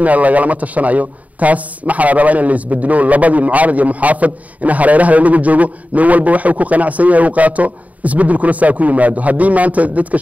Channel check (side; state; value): left; late; 0.071 ms